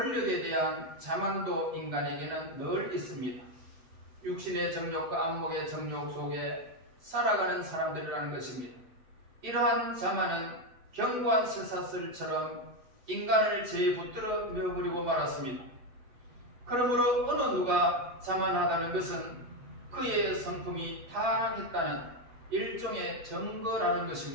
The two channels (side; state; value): left; late; 8.0 ms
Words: 대한 자만도 인간에게는 늘 있습니다. 육신의 정욕과 안목의 정욕 속에 살아가는 사람들이라는 것입니다. 이러한 자만은 견고한 쇠사슬처럼 인간을 제에 붙들어 메어버리고 말았습니다. 그러므로 어느 누가 자만하다는 것은 그의 성품이 타락했다는 일종의 증거라는